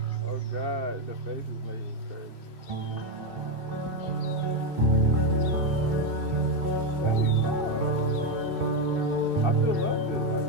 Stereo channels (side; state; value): left; late; 2.8 ms